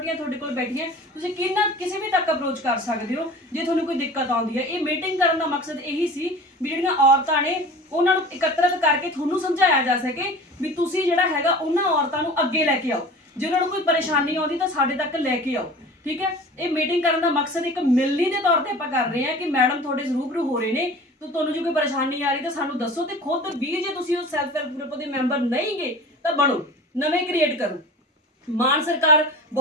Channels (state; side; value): normal; both; correlation 0.39